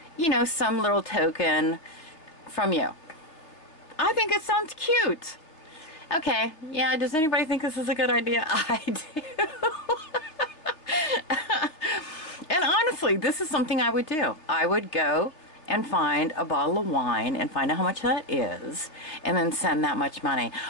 you know, some little token from you. I think it sounds cute. Okay, yeah, does anybody think this is a good idea? I do. And honestly, this is something I would do. I would go and find a bottle of wine and find out how much that is, and then send that much money.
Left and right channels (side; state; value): right; late; 3.2 ms